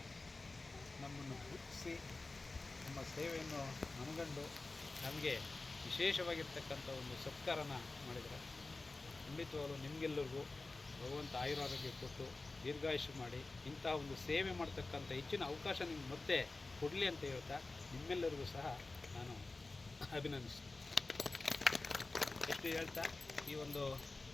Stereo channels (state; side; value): quieter; right; 3.4 dB